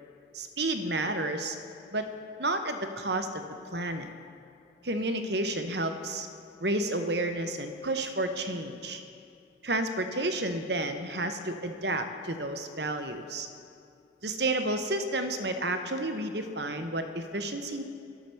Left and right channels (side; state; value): both; normal; correlation 0.13